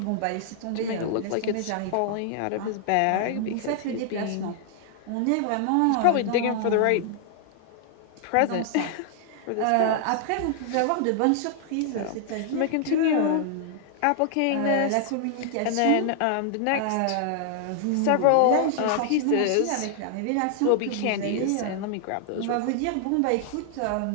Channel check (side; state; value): both; different; correlation 0.00